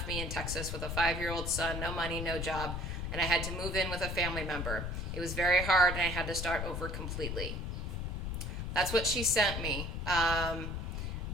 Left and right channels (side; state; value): left; noise; rumble, 3 dB below the sound